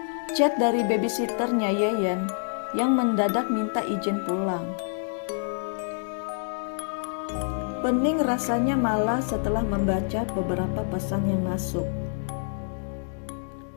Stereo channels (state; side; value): silent; right; 60 dB below the other